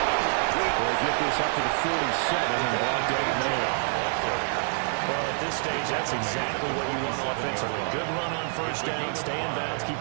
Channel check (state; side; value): silent; left; 60 dB below the other